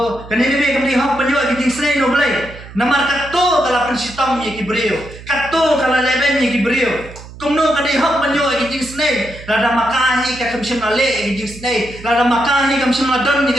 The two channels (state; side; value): noise; right; hum, 16 dB below the sound